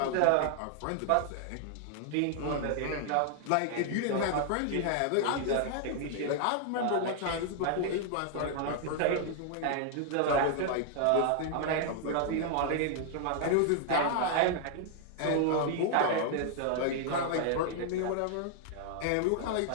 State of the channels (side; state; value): both; different; correlation 0.00